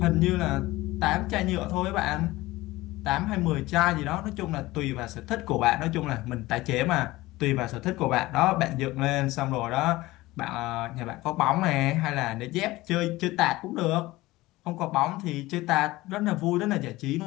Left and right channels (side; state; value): right; quieter; 18.9 dB